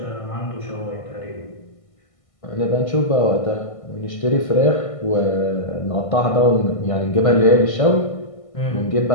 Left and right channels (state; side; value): late; right; 1.5 ms